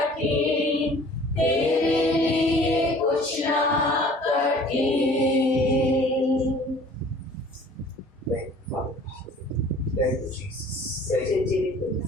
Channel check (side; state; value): both; normal; correlation 0.50